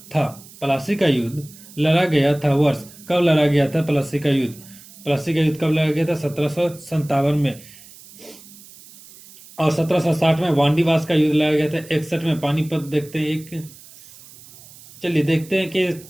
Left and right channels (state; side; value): noise; right; hiss, 21 dB below the sound